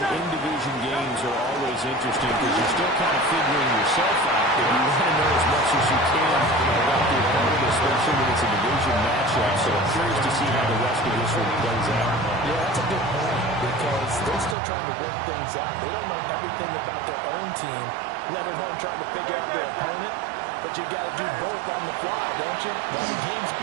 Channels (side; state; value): left; drops out; at 14.6 s